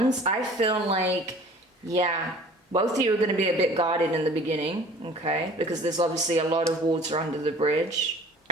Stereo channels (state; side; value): normal; both; correlation 0.48